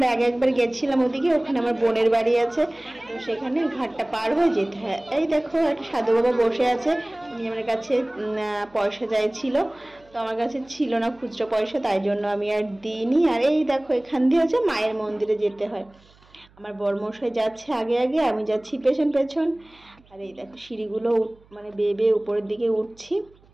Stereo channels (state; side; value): noise; right; hum, 29 dB below the sound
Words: একবার গেছিলাম ওদিকে, ওখানে আমার বোনের বাড়ি আছে, তো সেখানে ঘাটটা পার হয়ে যেতে হয়। এই দেখো একটা সাধু বাবা বসে আছে, উনি আমার কাছে পয়সা চাইছিল, তো আমার কাছে ছিল না খুচরো পয়সা, তাই জন্য আমি আর দিইনি। আর এই দেখো এখান দিয়ে হচ্ছে মায়ের মন্দিরে যেতে হয়। আমার বরমশাই যাচ্ছে আগে আগে, আমি যাচ্ছি পেছন পেছন। আর এই দেখো সিঁড়িগুলো বেয়ে বেয়ে উপরের দিকে উঠছি।